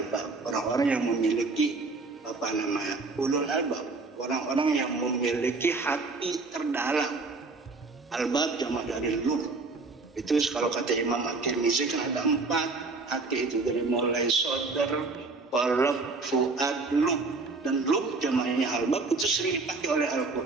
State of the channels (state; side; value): quieter; left; 3.8 dB